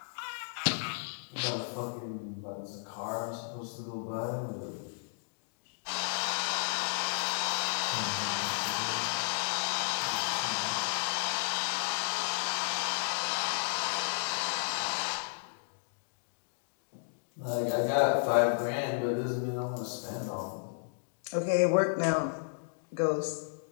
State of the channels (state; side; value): silent; right; digital silence